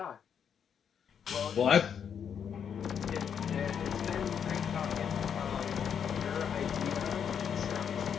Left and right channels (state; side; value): quieter; right; 7.8 dB